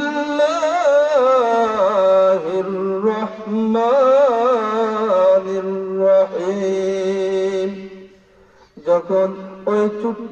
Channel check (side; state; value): both; identical; correlation 1.00